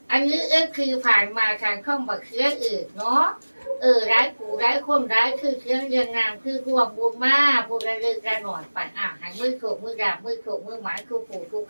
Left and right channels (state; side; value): inverted; both; correlation -1.00